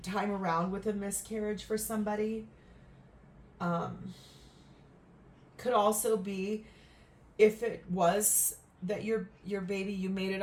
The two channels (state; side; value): identical; both; correlation 1.00